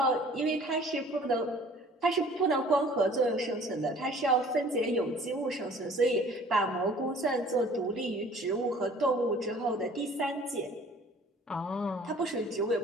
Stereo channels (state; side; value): normal; both; correlation 0.51